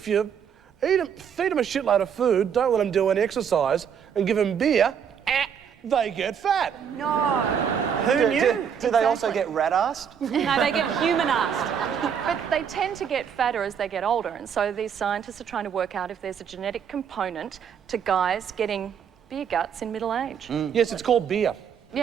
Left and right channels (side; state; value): left; quieter; 7.7 dB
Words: you feed them a shitload of food, don't let them do any exercise, and give them beer, they get fat. No. Who knew? Do they also get rat-assed? No, they get human-assed. But they tend to get fatter as they get older, and so these scientists are trying to work out if there's a genetic component to guys getting beer guts in middle age. Yes, it's called beer.